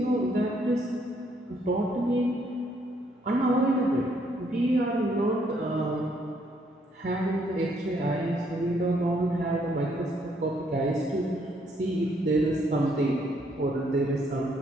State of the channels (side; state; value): both; normal; correlation 0.70